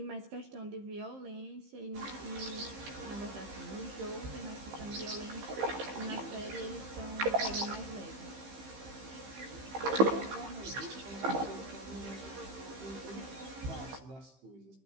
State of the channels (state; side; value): late; left; 15 ms